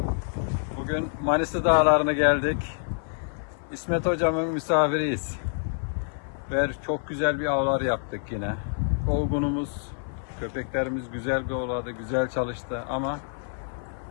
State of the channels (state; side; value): silent; right; 56 dB below the other